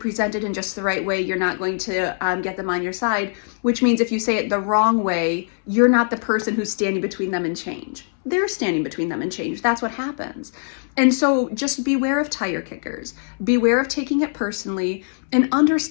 it in just the right way, you're not going to get them on your side, which means if you say it the wrong way, you're not the person who's standing between them and change. They're standing between them and change. That's what happens. And so just beware of tire kickers. Beware of taking it personally and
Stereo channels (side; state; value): right; silent; 64 dB below the other